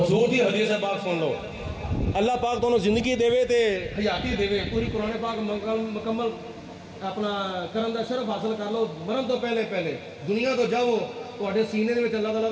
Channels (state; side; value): identical; both; correlation 1.00